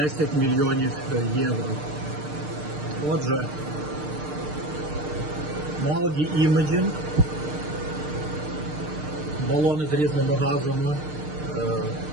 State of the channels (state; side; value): late; left; 6.6 ms